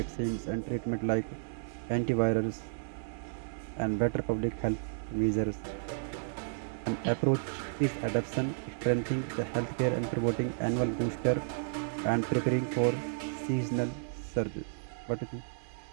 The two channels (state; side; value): silent; left; digital silence